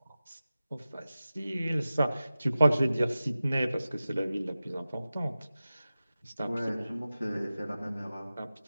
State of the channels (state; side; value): inverted; both; correlation -0.95